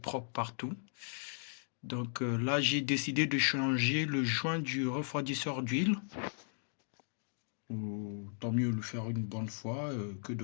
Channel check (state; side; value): silent; right; digital silence